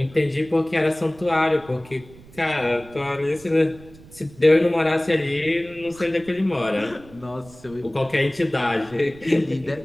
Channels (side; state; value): right; noise; rumble, 21 dB below the sound